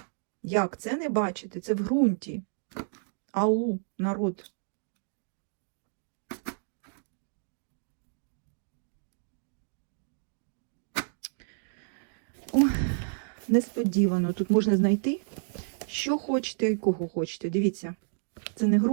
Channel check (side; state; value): left; silent; digital silence